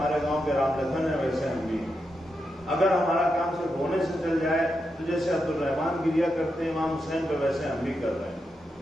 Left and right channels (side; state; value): both; normal; correlation 0.86